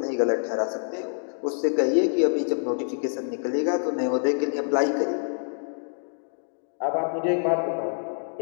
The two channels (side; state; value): right; silent; digital silence